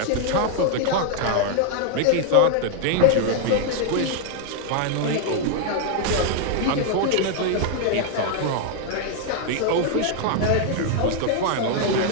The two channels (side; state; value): both; different; correlation 0.00